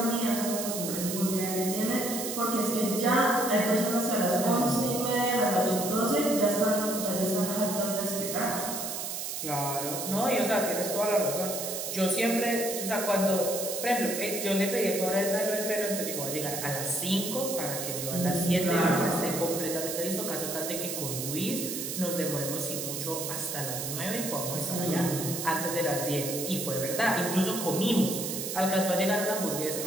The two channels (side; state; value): right; noise; hiss, 4 dB below the sound